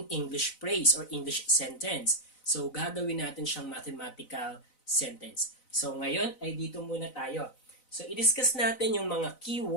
English phrase or English sentence. So, gagawin natin siyang mathematical sentence. So, ngayon ay dito muna tayo. So, i-discuss natin yung mga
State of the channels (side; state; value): right; late; 4.0 ms